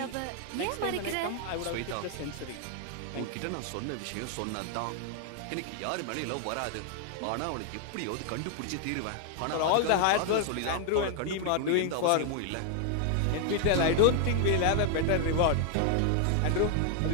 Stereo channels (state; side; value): different; both; correlation 0.00